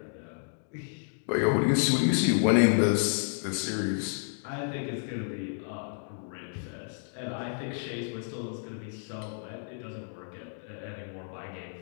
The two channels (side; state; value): right; silent; digital silence